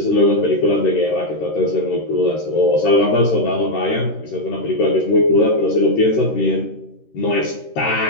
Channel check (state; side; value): late; right; 13 ms